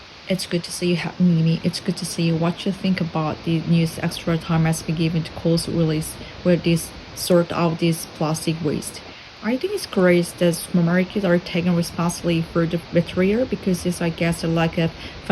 It's good to see you having me. It's good to see you. What you think about the news extra time has been given to Coles release where this sort out this plastic waste. I think it's great that supermarkets are taking responsibility for the material because it's I guess a lack of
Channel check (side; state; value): both; identical; correlation 1.00